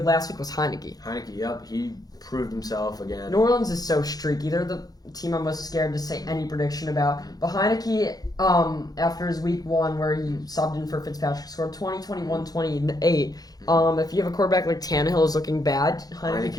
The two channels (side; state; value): right; late; 0.19 ms